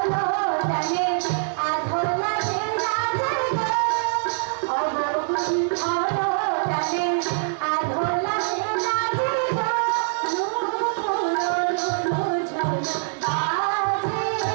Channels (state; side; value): silent; left; digital silence